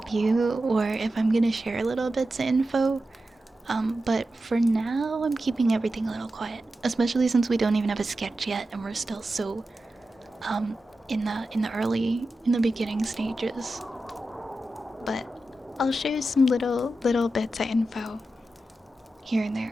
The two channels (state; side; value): normal; both; correlation 0.91